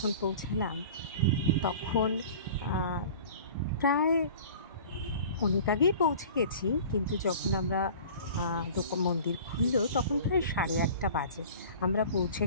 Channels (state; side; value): inverted; both; correlation -0.42